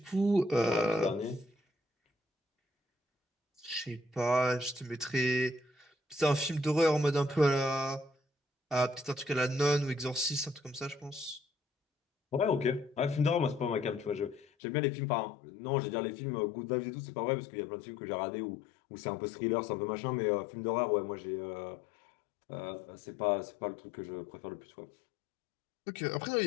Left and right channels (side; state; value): right; drops out; at 14.5 s